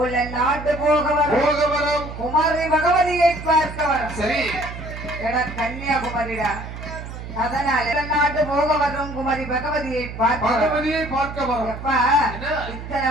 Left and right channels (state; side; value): noise; right; hum, 10 dB below the sound